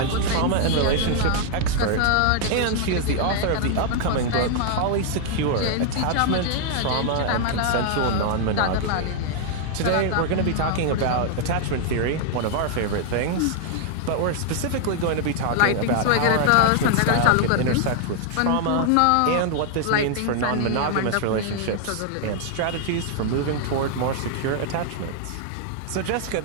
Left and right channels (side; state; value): both; different; correlation 0.00